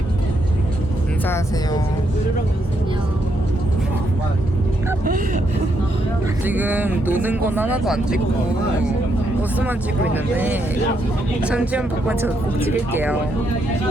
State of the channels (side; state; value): both; normal; correlation 0.77